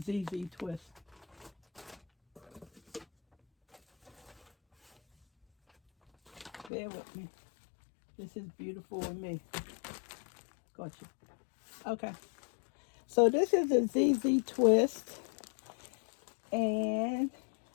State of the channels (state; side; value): drops out; right; at 6.7 s